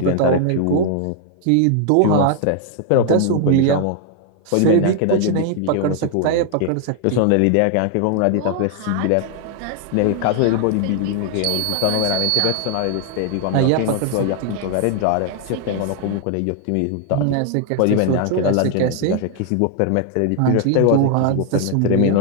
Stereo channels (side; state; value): both; different; correlation 0.00